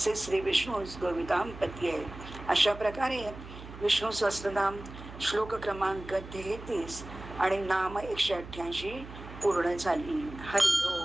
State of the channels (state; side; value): noise; right; hum, 14 dB below the sound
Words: श्री विष्णू गोविदांपती आहे. अशा प्रकारे विष्णू सहस्त्रनाम श्लोक क्रमांक 33 आणि नाम 188 पूर्ण झाली. हरी.